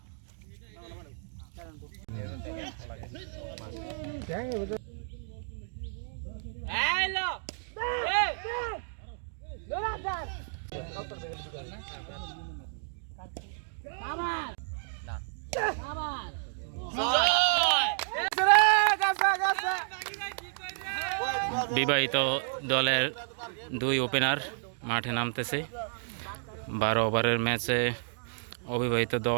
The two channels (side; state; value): left; silent; digital silence